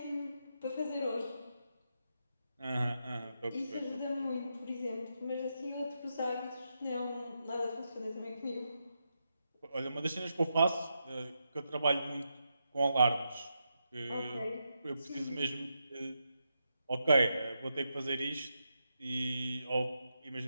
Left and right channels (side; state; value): both; inverted; correlation -0.85